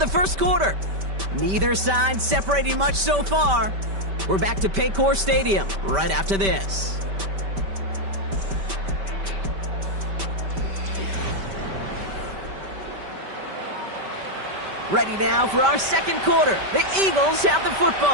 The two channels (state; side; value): late; left; 5.1 ms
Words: the 1st quarter. Neither side separating much so far. We're back to Paycor Stadium right after this. Ready now for our second quarter. The Eagles have the